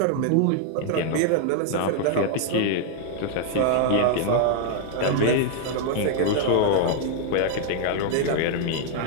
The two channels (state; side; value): different; both; correlation 0.00